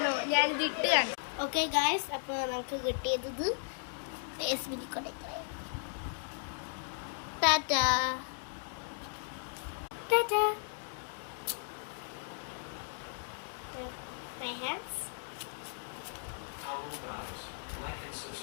ഞാനിത് ഇട്ട് കാണിച്ചു. ഓക്കെ ഗായ്സ്, അപ്പൊ നമുക്ക് കിട്ടിയത് ഇത് Tata Tata. My hands. Hello guys, like and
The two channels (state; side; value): silent; right; digital silence